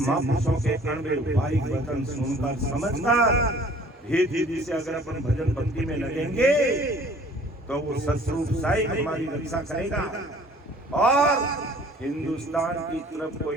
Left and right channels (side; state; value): both; normal; correlation 0.52